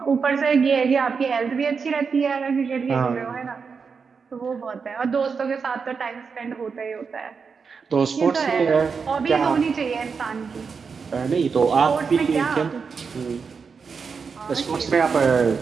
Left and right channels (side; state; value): left; quieter; 5.5 dB